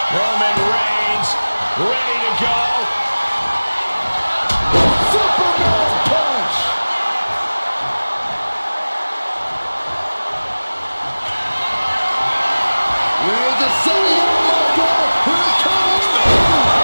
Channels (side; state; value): both; inverted; correlation -1.00